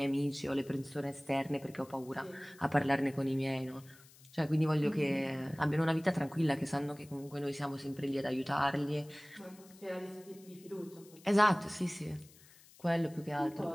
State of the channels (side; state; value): left; noise; hiss, 24 dB below the sound